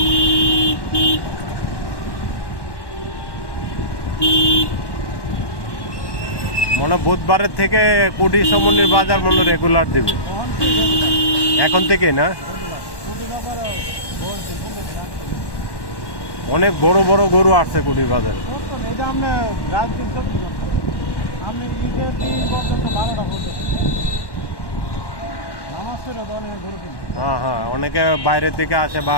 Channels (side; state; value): right; late; 1.1 ms